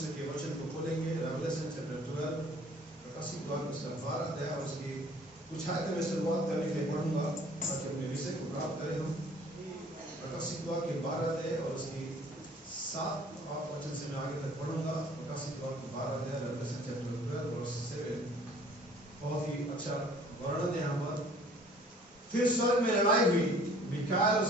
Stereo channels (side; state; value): both; normal; correlation 0.54